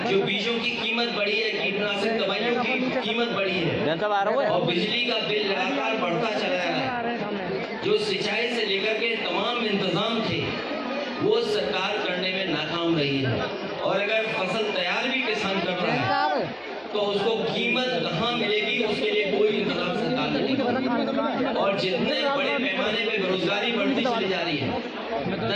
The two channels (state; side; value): identical; both; correlation 1.00